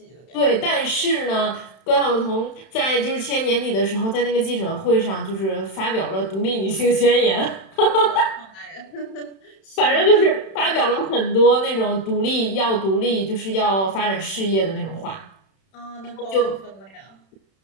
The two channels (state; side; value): late; right; 31 ms